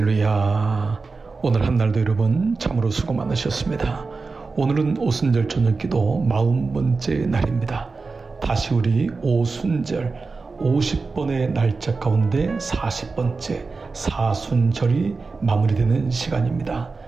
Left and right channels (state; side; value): quieter; left; 4.2 dB